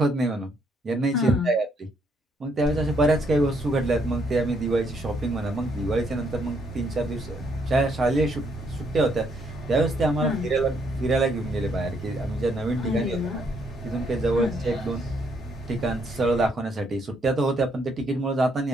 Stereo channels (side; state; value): both; normal; correlation 0.71